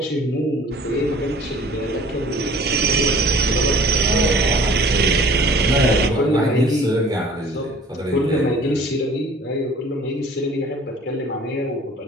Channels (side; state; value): both; normal; correlation 0.49